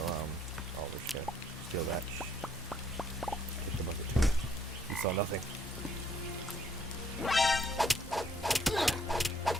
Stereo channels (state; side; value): normal; both; correlation 0.67